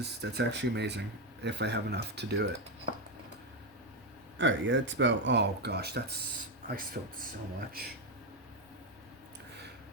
actually amazing, if I have enough to do it. Alright, yeah, it's about... Oh, gosh, I spilled so much.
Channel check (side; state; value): left; noise; rumble, 29 dB below the sound